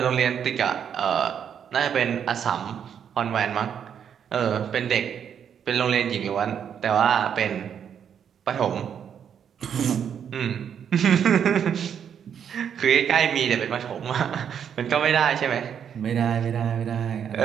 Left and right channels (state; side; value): quieter; left; 8.2 dB